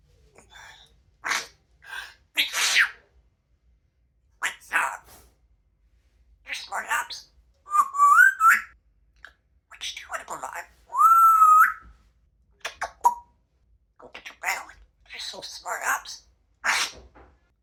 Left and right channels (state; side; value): identical; both; correlation 1.00